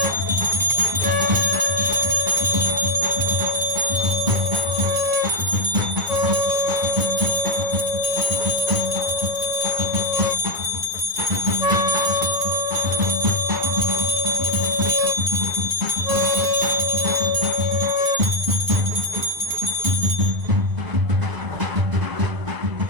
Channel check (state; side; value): late; left; 1.0 ms